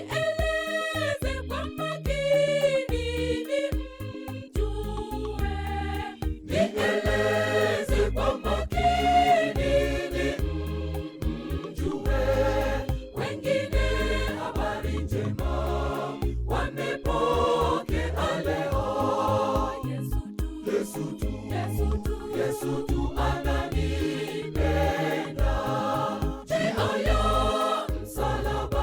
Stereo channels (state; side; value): identical; both; correlation 1.00